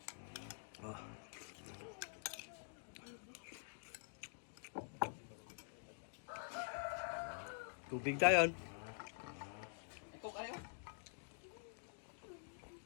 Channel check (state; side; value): silent; right; digital silence